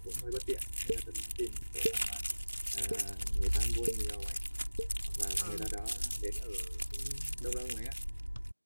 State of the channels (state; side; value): inverted; both; correlation -1.00